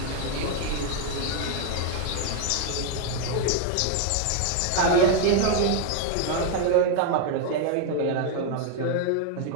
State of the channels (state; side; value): different; both; correlation 0.01